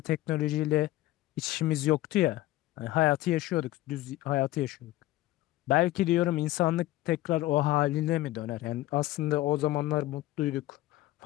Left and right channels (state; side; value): quieter; right; 16.3 dB